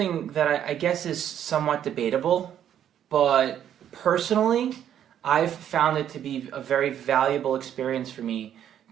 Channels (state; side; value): quieter; left; 10.1 dB